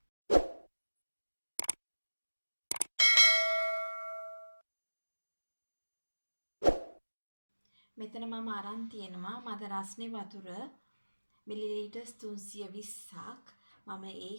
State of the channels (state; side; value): inverted; both; correlation -1.00